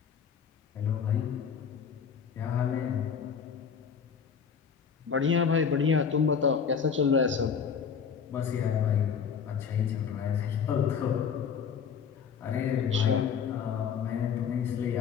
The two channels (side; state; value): right; quieter; 6.8 dB